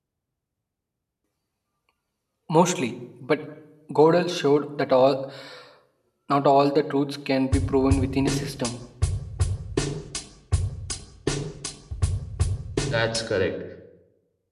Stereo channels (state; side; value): identical; both; correlation 1.00